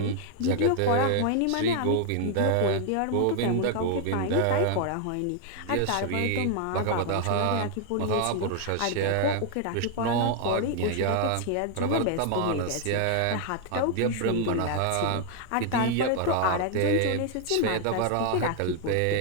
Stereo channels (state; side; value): different; both; correlation 0.00